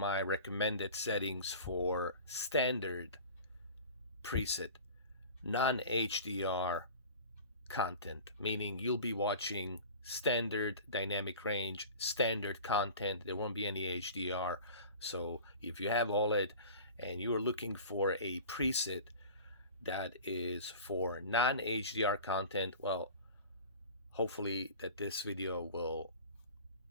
recommended settings for standard preset, non-HDR content, meaning you'll be watching standard dynamic range, standard content. There won't be any HDR. So if you have OLED and you are looking for a preset that is for non-HDR content, well, hopefully that this video will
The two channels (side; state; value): both; inverted; correlation -0.39